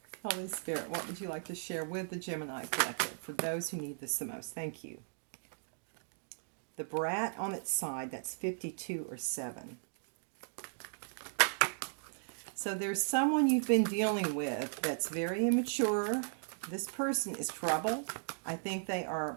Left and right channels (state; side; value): silent; left; digital silence